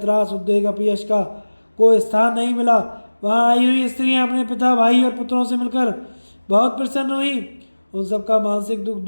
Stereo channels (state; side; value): inverted; both; correlation -1.00